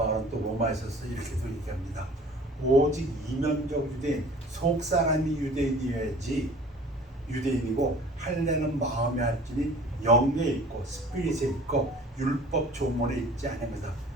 또 로마에서 이렇게도 얘기합니다. 오직 이면적 유대인, 속사람이 유대인이어야지 유대인이고, 할례는 마음에 할지니 영에 있고 스피릿에 있고 율법 조문에 있지 않습니다.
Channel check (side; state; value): both; normal; correlation 0.47